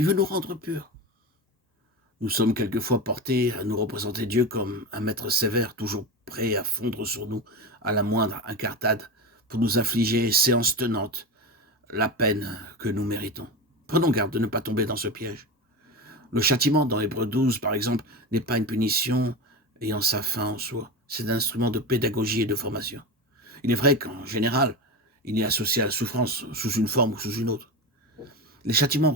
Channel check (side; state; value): both; normal; correlation 0.22